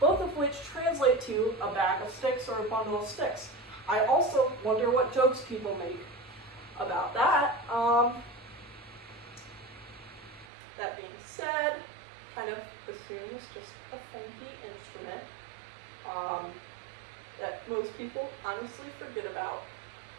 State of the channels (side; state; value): left; drops out; at 10.5 s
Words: of which translate to a bag of sticks or a bundle of sticks. I also wonder what jokes people make about that. That being said, kind of bassoon is just a funky instrument that most people honestly forget about,